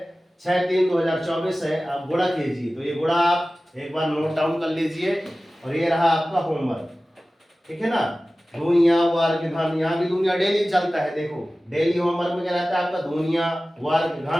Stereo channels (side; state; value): both; normal; correlation 0.96